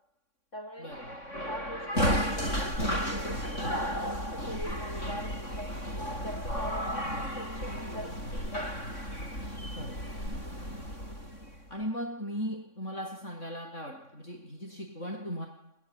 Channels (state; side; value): late; right; 3.6 ms